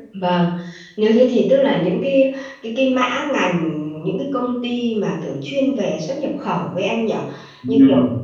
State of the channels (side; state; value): both; identical; correlation 1.00